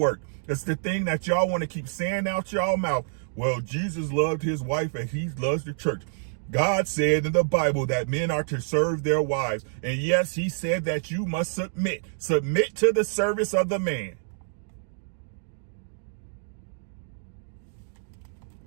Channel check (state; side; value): silent; left; digital silence